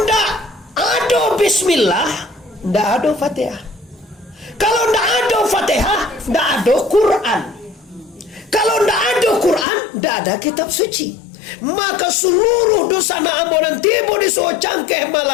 ndak ada bismillah, ndak ada Fatihah. Kalau ndak ada Fatihah, ndak ada Quran. Kalau ndak ada Quran, ndak ada kitab suci. Maka seluruh dosa na ambonan tiba disuruh cangkeh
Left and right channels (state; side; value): drops out; right; at 9.7 s